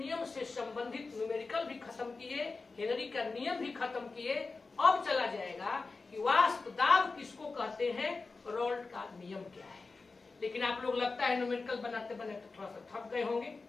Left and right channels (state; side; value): quieter; right; 4.0 dB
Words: से संबंधित न्यूमेरिकल भी खत्म किए, हेनरी का नियम भी खत्म किए। अब चला जाएगा कि वाष्प दाब किसको कहते हैं, रॉल्ट का नियम क्या है। लेकिन आप लोग लगता है न्यूमेरिकल बनाते बनाते थोड़ा सा थक गए होंगे,